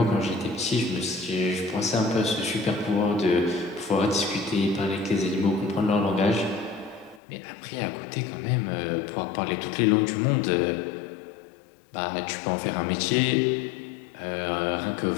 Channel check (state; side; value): drops out; right; at 7.2 s